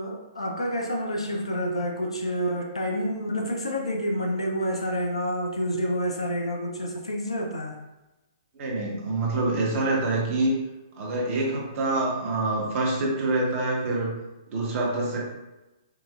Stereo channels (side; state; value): both; inverted; correlation -0.56